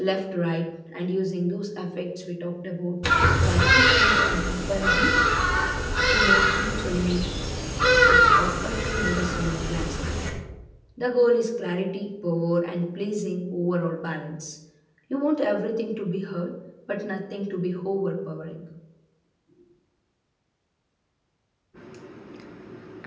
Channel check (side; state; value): both; identical; correlation 1.00